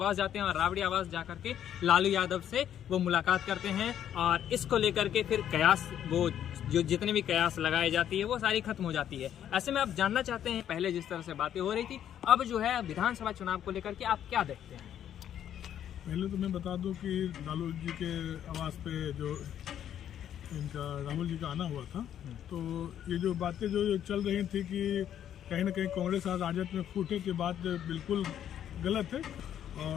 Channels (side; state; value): right; quieter; 10.2 dB